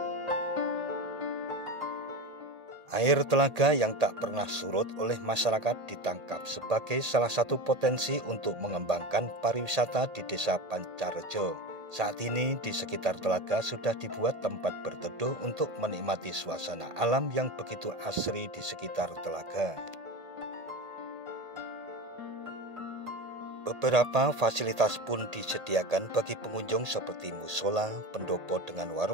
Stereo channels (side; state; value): left; late; 1.8 ms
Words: Air telaga yang tak pernah surut oleh masyarakat ditangkap sebagai salah satu potensi untuk mengembangkan pariwisata di Desa Pancarejo. Saat ini di sekitar telaga sudah dibuat tempat berteduh untuk menikmati suasana alam yang begitu asri di sekitar telaga. Beberapa fasilitas pun disediakan bagi pengunjung seperti musola, pendopo dengan